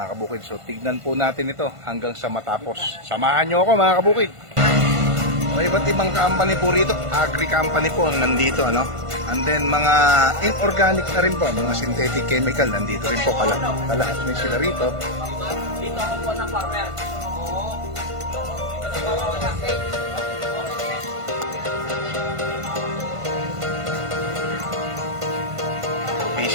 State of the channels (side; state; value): left; late; 1.5 ms